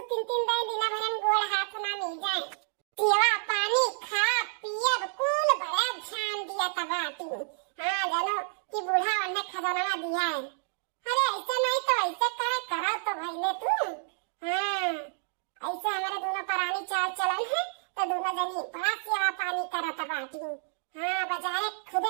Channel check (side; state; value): left; silent; digital silence